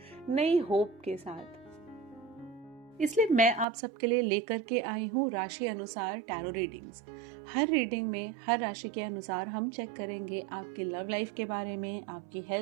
नई होप के साथ। इसलिए मैं आप सबके लिए लेकर के आई हूँ राशि अनुसार टैरो रीडिंग्स। हर रीडिंग में हर राशि के अनुसार हम चेक करेंगे आपकी लव लाइफ के बारे में, आपकी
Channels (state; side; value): drops out; left; at 3.7 s